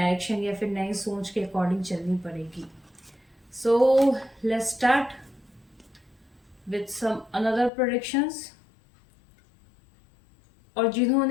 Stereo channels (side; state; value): right; drops out; at 7.7 s